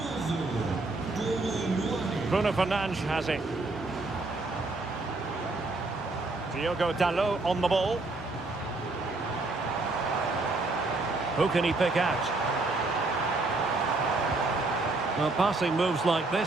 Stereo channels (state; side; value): quieter; left; 3.2 dB